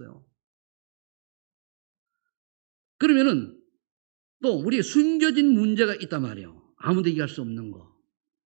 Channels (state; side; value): silent; left; digital silence